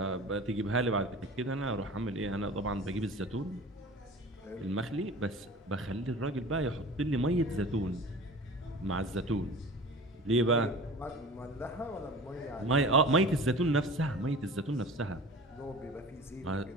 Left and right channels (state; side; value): normal; both; correlation 0.39